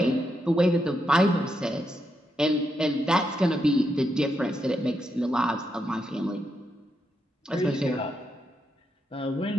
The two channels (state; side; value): normal; both; correlation 0.82